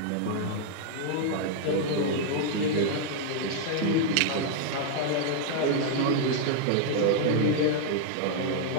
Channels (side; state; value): both; different; correlation -0.01